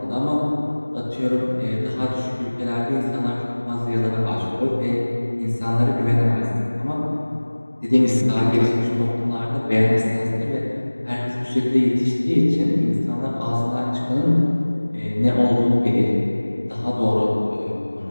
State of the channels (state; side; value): inverted; both; correlation -1.00